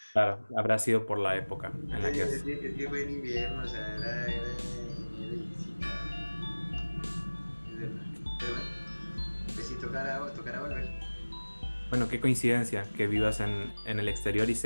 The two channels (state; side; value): inverted; both; correlation -1.00